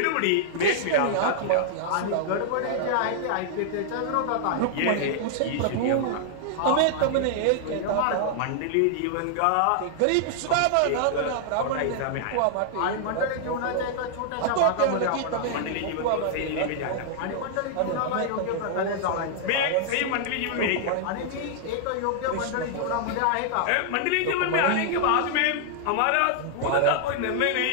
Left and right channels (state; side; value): different; both; correlation -0.01